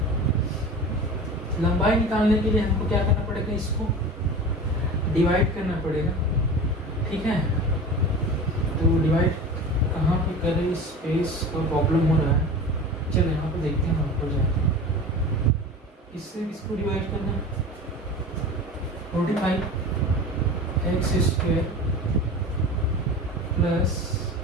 लंबाई निकालने के लिए हमको क्या करना पड़ेगा, इसको डिवाइड करना पड़ेगा। ठीक है, तो डिवाइड कहाँ पे करें, स्पेस का प्रॉब्लम हो रहा है। चलो यहाँ पे देखते हैं, हम हो जाएगा। इससे इसको डिवाइड करना है, 45x² प्लस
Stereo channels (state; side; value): normal; both; correlation 0.34